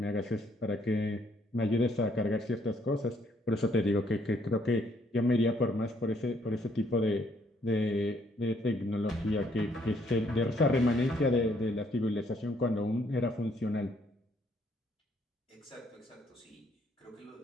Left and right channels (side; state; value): both; normal; correlation 0.68